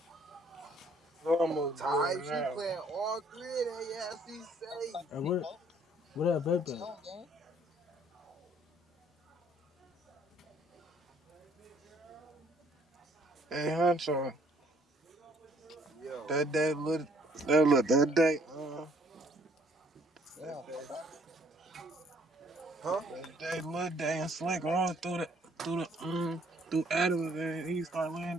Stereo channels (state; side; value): normal; both; correlation 0.63